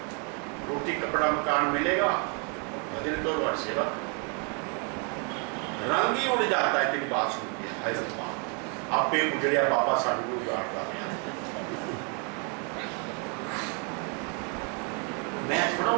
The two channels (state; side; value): quieter; left; 36.8 dB